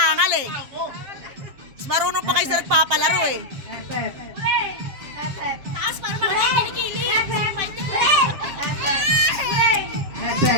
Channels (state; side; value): late; left; 7.5 ms